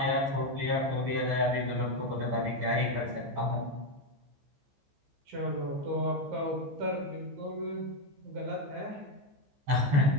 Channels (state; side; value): late; left; 15 ms